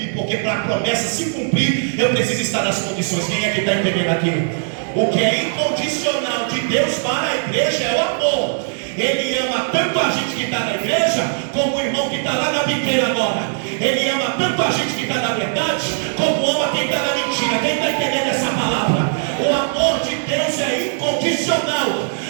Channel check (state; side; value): silent; left; 56 dB below the other